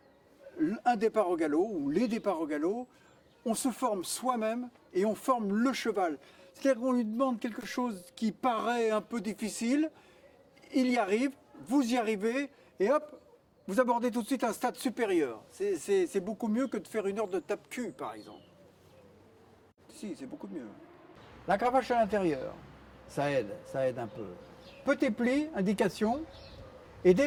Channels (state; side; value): identical; both; correlation 1.00